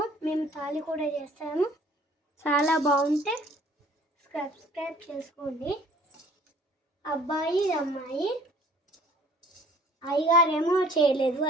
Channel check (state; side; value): normal; both; correlation 0.54